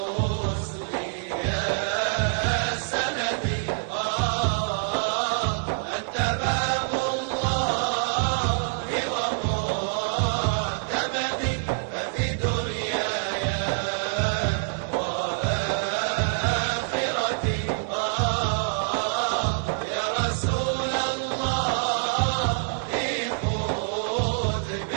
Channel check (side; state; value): left; silent; 61 dB below the other